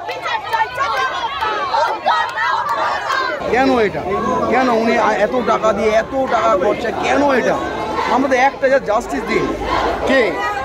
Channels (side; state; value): both; identical; correlation 1.00